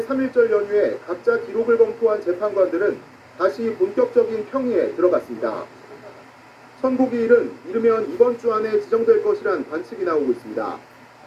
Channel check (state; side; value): identical; both; correlation 1.00